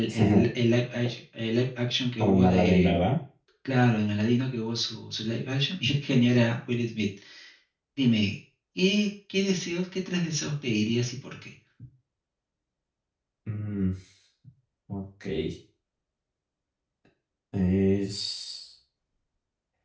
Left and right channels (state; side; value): identical; both; correlation 1.00